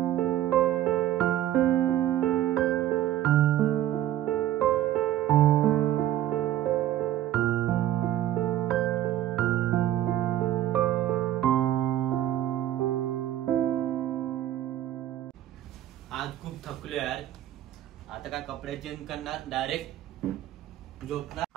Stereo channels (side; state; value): left; quieter; 12.9 dB